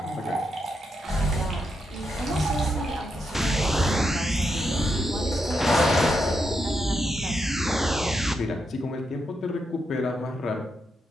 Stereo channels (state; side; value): normal; both; correlation 0.83